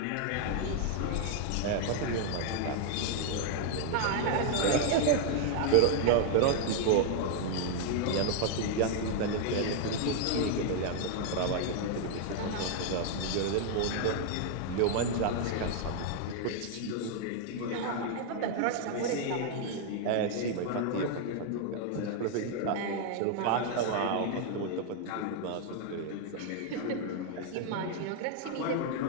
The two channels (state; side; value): different; both; correlation 0.00